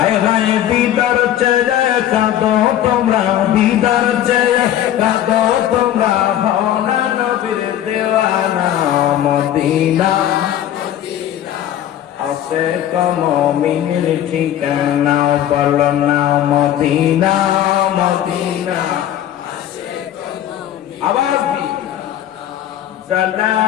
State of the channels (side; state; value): right; quieter; 11.5 dB